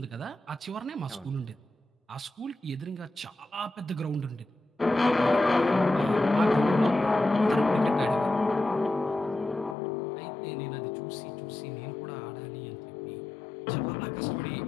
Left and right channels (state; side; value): drops out; right; at 9.8 s